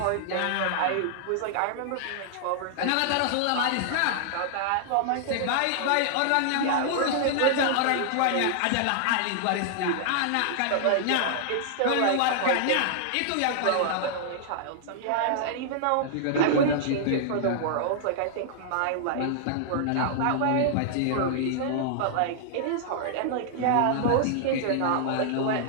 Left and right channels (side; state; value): both; different; correlation -0.01